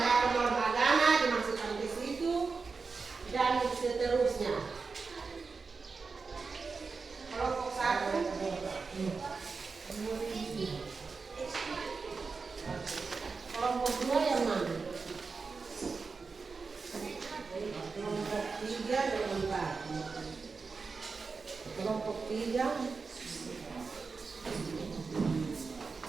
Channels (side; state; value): left; quieter; 4.6 dB